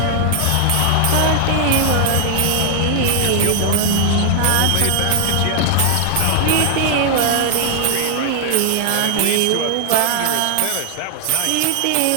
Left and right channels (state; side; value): different; both; correlation 0.00